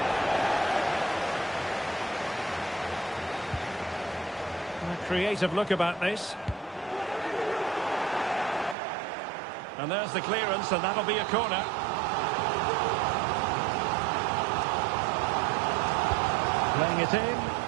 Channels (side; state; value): left; drops out; at 8.8 s